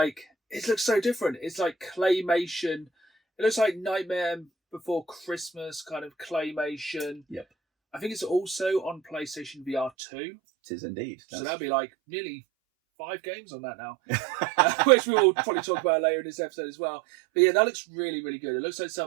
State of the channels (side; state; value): left; drops out; at 9.9 s